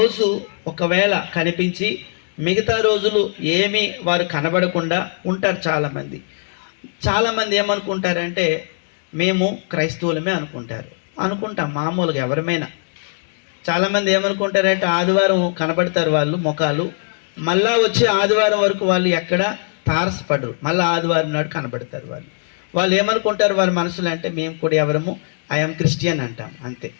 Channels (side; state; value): right; silent; digital silence